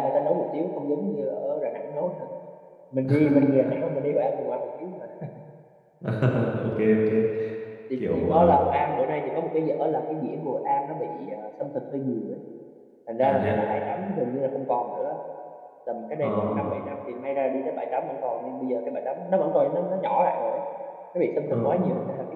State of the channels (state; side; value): identical; both; correlation 1.00